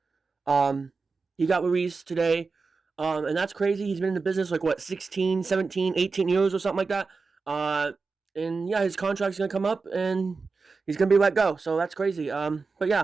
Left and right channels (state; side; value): quieter; left; 4.4 dB